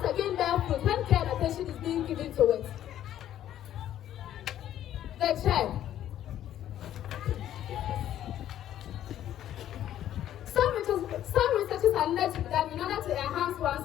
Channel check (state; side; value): quieter; right; 11.6 dB